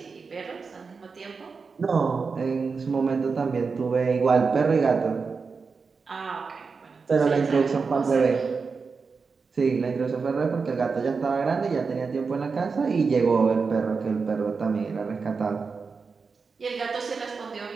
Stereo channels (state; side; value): quieter; left; 4.9 dB